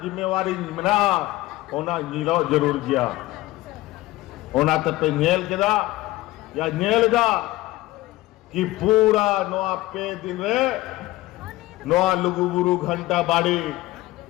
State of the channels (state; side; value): quieter; right; 18.1 dB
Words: जिम्मेवारी मिला ओना नीलो जरूर किया ओना तब पे नेल केदा या नेल गा कि पूरा नवा पे दिन रे नवा लुगुबुरु घंटा बाड़ी